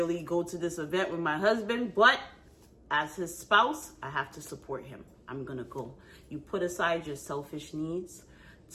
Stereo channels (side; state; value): both; identical; correlation 1.00